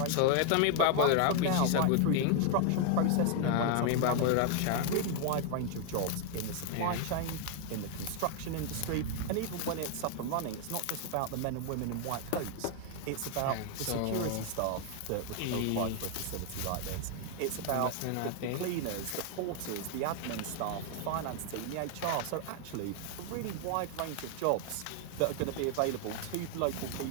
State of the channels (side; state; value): both; different; correlation 0.00